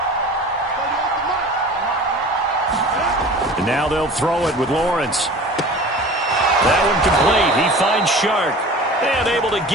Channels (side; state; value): both; normal; correlation 0.40